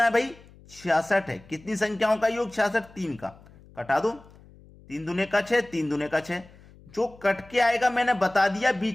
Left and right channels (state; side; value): noise; left; hum, 24 dB below the sound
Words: है भाई? 66 है। कितनी संख्याओं का योग? 66। 3 का कटा दो, 3 दूने का 6, 3 दूने का 6। जो कट के आएगा मैंने बता दिया,